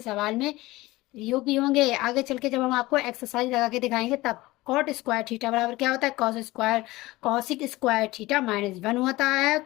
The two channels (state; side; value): quieter; right; 19.4 dB